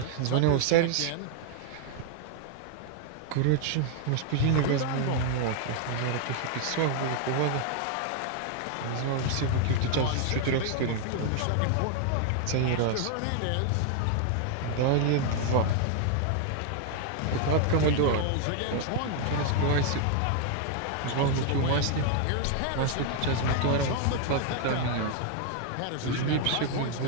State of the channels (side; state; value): both; different; correlation 0.00